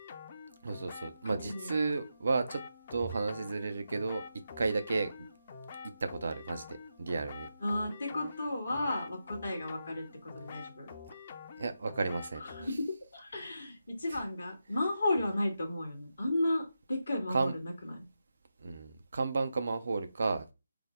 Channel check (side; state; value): both; inverted; correlation -0.88